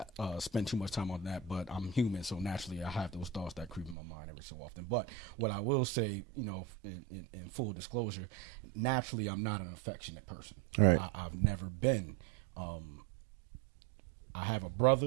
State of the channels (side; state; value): left; drops out; at 4.0 s